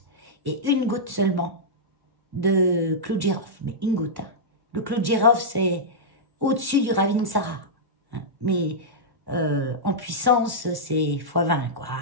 et 1 goutte seulement de clou de girofle. Mais 1 goutte, hein. Le clou de girofle, c'est au-dessus du Ravintsara. Hein. Mais en puissance, c'est x20, quoi.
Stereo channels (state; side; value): late; left; 1.1 ms